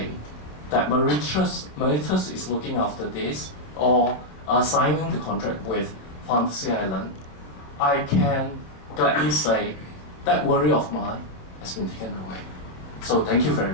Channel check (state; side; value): late; right; 27 ms